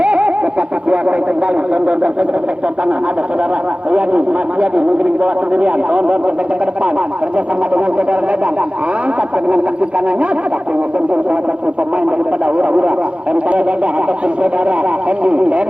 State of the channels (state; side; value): late; left; 0.060 ms